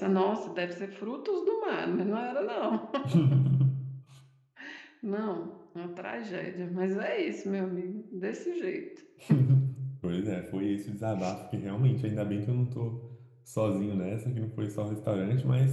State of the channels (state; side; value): identical; both; correlation 1.00